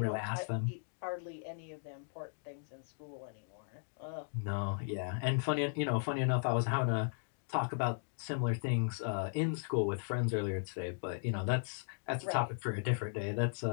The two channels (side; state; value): right; silent; digital silence